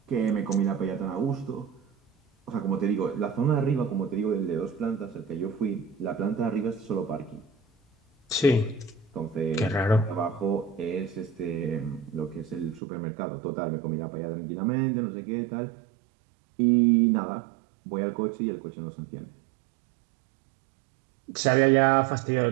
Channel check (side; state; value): left; drops out; at 12.8 s